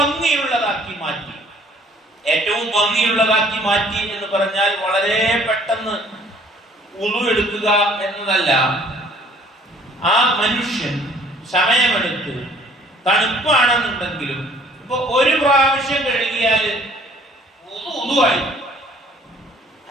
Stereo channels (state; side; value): normal; both; correlation 0.57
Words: മാറ്റി. ഏറ്റവും ഭംഗിയുള്ളതാക്കി മാറ്റി എന്ന് പറഞ്ഞാൽ വളരെ പെട്ടെന്ന് വുദൂ എടുക്കുക എന്നതല്ല. ആ മനുഷ്യൻ സമയമെടുത്ത്, തണുപ്പാണെന്നുണ്ടെങ്കിലും ഇപ്പൊ ഒരു പ്രാവശ്യം കഴുകിയാൽ വുദൂആയി,